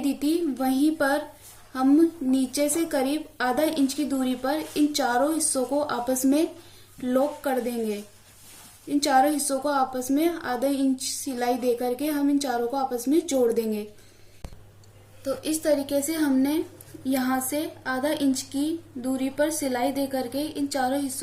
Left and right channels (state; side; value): identical; both; correlation 1.00